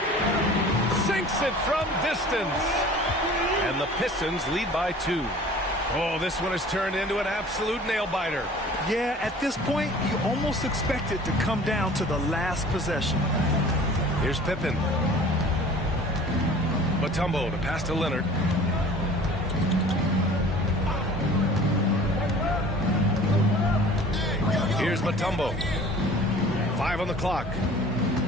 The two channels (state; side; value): normal; both; correlation 0.46